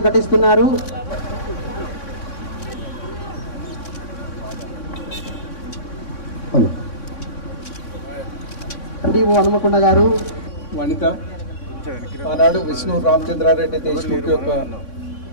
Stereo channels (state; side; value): late; right; 3.6 ms